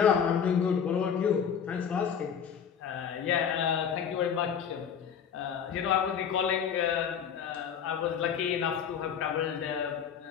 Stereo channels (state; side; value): quieter; right; 7.7 dB